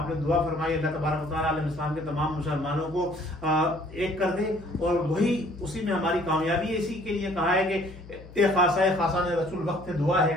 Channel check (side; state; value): left; noise; hum, 18 dB below the sound